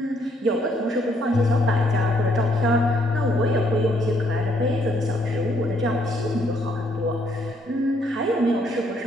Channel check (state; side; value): normal; both; correlation 0.69